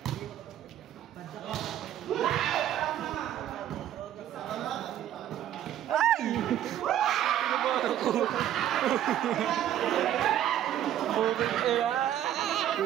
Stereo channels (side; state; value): left; quieter; 11.5 dB